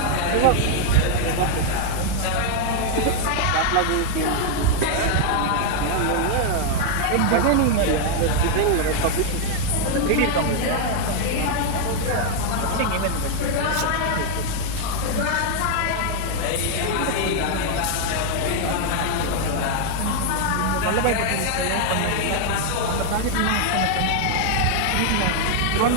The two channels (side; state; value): both; different; correlation 0.00